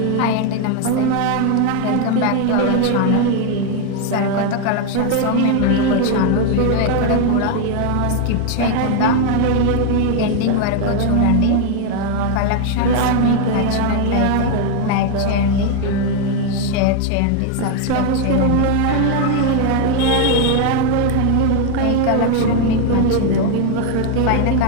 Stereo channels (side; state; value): both; different; correlation 0.01